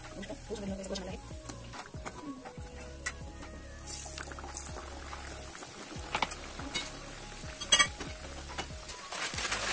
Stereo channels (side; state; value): both; identical; correlation 1.00